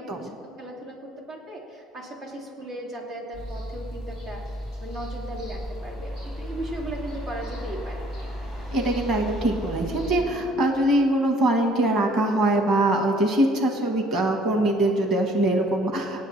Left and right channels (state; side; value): normal; both; correlation 0.59